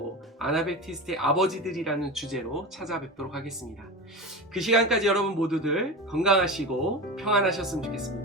아나베프티스트의 아버지들이라는 주제로 찾아뵙도록 하겠습니다. 그 시간까지 여러분 모두들 건강하시고 평안하셨으면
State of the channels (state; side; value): normal; both; correlation 0.25